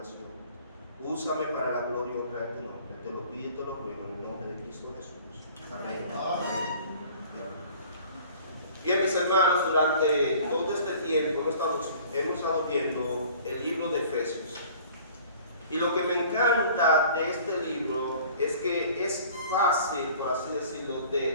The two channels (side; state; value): both; inverted; correlation -0.49